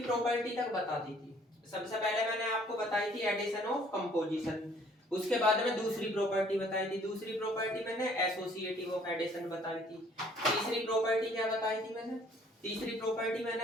प्रॉपर्टी तक बता दी थी। सबसे पहले मैंने आपको बताई थी एडिशन ऑफ कंपोजिशन। उसके बाद में दूसरी प्रॉपर्टी बताई थी। दूसरी प्रॉपर्टी मैंने एसोसिएटिव ऑफ एडिशन बताई थी। तीसरी प्रॉपर्टी क्या बताई थी मैंने? तीसरी प्रॉपर्टी मैंने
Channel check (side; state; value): both; normal; correlation 0.59